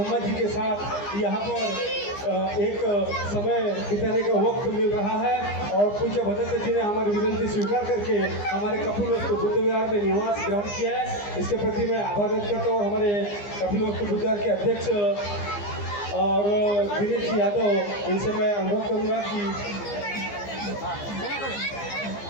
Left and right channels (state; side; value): late; right; 15 ms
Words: जी के साथ यहाँ पर एक समय बिताने का वक्त मिल रहा है और पूज्य भदंत जी ने हमारी विनती स्वीकार करके हमारे कपिलवस्तु बुद्ध विहार में निवास ग्रहण किया है। इसके प्रति मैं आभार व्यक्त करता हूँ। और हमारे कपिलवस्तु बुद्ध विहार के अध्यक्ष और दिनेश जी यादव, इनसे मैं अनुरोध करूँगा कि